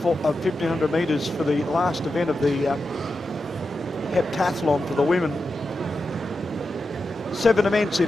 metres for the last event of the heptathlon for the women. 7 events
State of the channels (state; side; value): normal; both; correlation 0.89